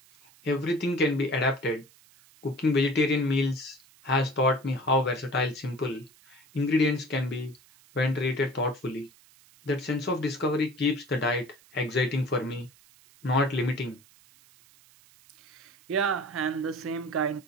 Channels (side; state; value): right; noise; hiss, 27 dB below the sound